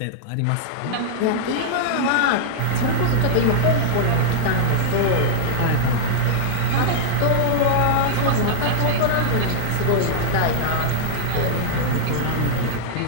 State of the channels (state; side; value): different; both; correlation -0.02